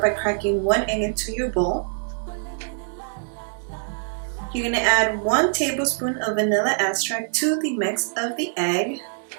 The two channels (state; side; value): silent; left; digital silence